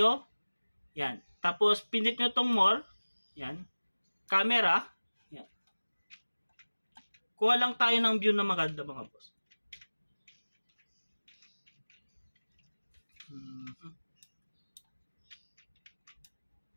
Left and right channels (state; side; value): inverted; both; correlation -1.00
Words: yan. Tapos, pindot nyo tong more, yan. Camera, yan. Kuha lang tayo ng view na maganda mga boss.